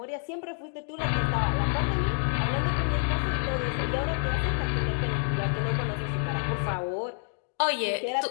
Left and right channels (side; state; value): right; silent; 56 dB below the other